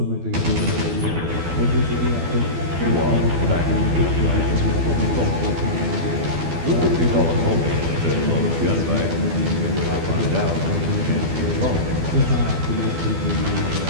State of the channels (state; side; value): late; left; 12 ms